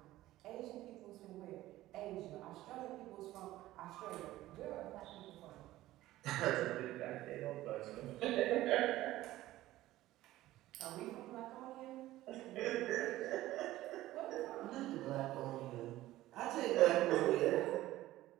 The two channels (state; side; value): quieter; left; 15.8 dB